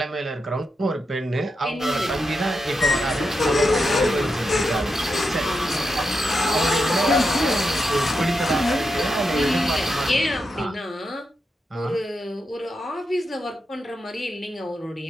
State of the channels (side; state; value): both; normal; correlation 0.86